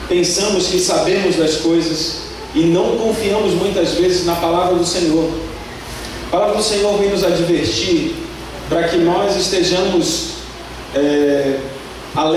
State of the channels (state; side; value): identical; both; correlation 1.00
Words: pensamos que sabemos das coisas e não confiamos muitas vezes na palavra do Senhor. A palavra do Senhor vem nos advertir para que nós estejamos